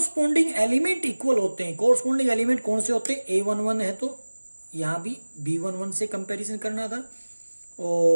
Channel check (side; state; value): both; inverted; correlation -1.00